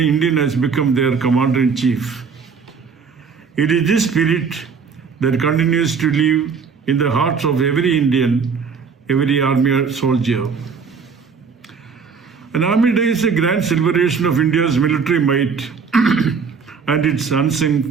has become their commander-in-chief. It is this spirit that continues to live in the hearts of every Indian, every army soldier. An Army Day is a grand celebration of India's military might and its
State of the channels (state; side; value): quieter; left; 5.7 dB